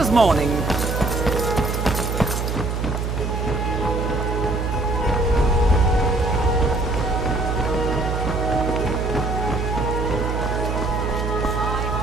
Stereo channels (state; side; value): noise; right; hum, 1 dB below the sound